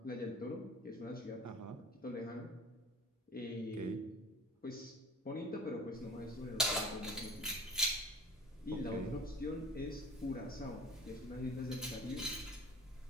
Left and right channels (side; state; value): both; normal; correlation 0.40